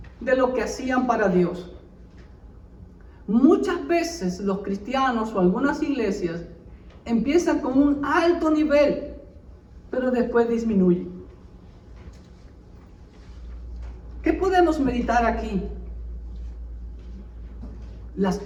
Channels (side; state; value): both; identical; correlation 1.00